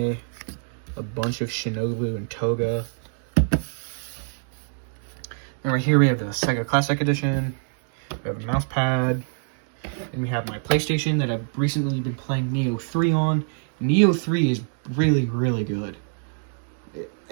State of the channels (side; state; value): left; silent; 62 dB below the other